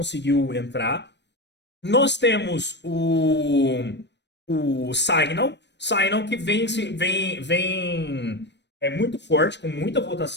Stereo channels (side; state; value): right; late; 0.51 ms